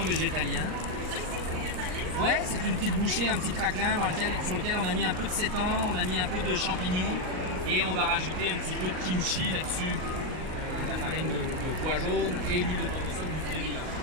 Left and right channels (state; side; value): late; left; 38 ms